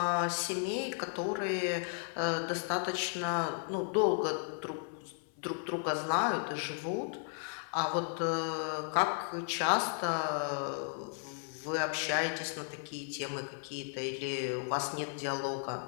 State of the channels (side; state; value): right; silent; 55 dB below the other